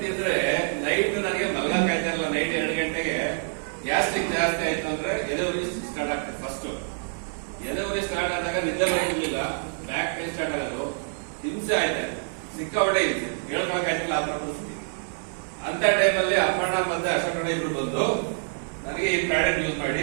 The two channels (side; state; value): left; silent; 61 dB below the other